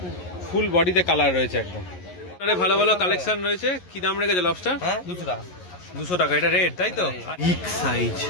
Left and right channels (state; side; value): late; right; 11 ms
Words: ফুল বডিতে কালার রয়েছে একদম। ভালো ভালো কালেকশন রয়েছে। কি দাম রেখেছো লবস্টার? 200 টাকা। 200 টাকা। এটা রেড তাই তো? বিগ সাইজ,